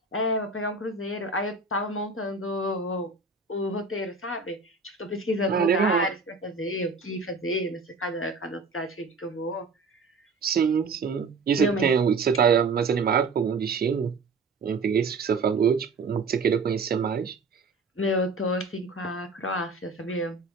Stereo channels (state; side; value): quieter; left; 4.0 dB